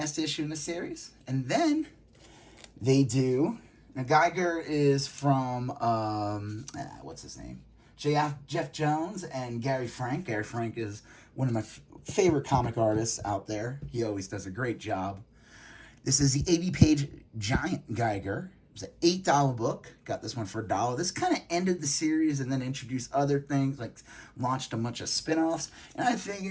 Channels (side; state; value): both; identical; correlation 1.00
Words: issue in the series. And then they do... Now, Geiger is from, what's his name? Jeff Jones and Gary Frank. Gary Frank is one of my favorite comic artists out there. He always does a great job. This is the 80-page Giant Geiger. It's an $8 book. Got this one for $1. This kind of ended the series and then introduced other things, like launched a bunch of spin-offs. And I